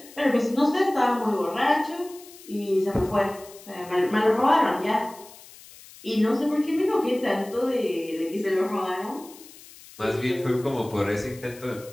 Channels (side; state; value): left; noise; hiss, 20 dB below the sound